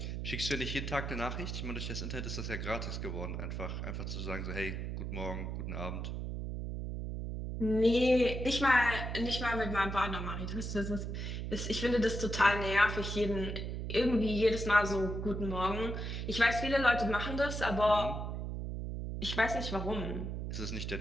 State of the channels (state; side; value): noise; right; hum, 4 dB below the sound